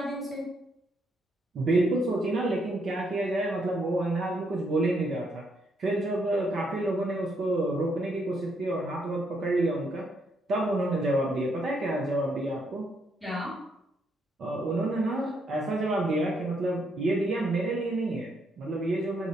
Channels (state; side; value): normal; both; correlation 0.74